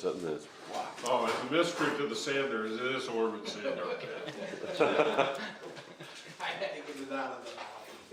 there. Oh, it's a mystery to the Sanders, it is Orville Sander. I had to get it out of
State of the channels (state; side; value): identical; both; correlation 1.00